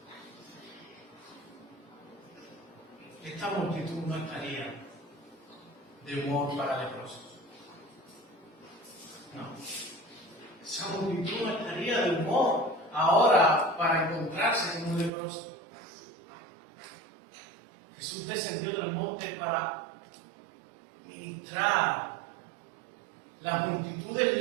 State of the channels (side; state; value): left; drops out; at 15.1 s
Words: Esta multitud no estaría de humor para leprosos. No. Esa multitud no estaría de humor ahora para encontrarse con un leproso. Jesús descendió del monte para ministrar. Las multitudes